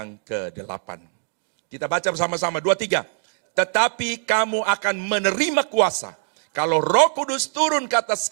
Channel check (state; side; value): silent; left; digital silence